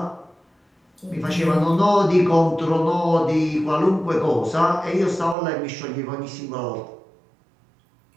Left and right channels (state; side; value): drops out; left; at 5.4 s